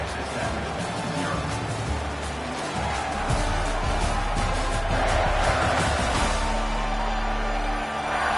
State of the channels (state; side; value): identical; both; correlation 1.00